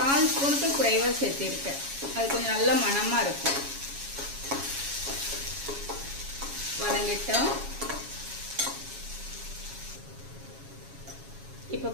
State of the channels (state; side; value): late; left; 7.2 ms